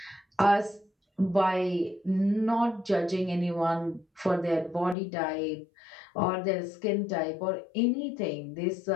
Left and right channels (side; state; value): right; drops out; at 5.0 s